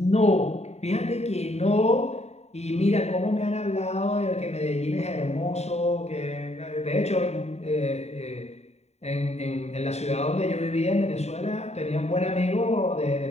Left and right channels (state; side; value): late; right; 0.32 ms